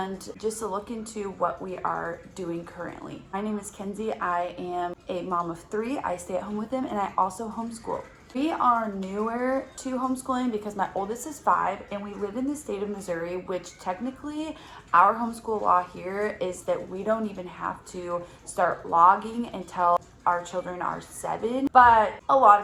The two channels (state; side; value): identical; both; correlation 1.00